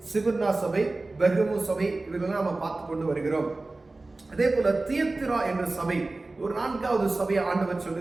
சிவர்னா சபை, பெர்கமு சபை, இவர்களெல்லாம் நம்ம பார்த்து கொண்டு வருகிறோம். அதே போல தியத்திரா என்ற சபை, ஒரு 4வது சபையை ஆண்டவர்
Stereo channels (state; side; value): quieter; left; 3.2 dB